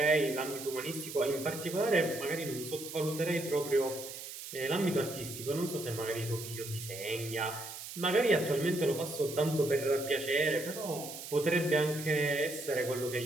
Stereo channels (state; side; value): noise; right; hiss, 10 dB below the sound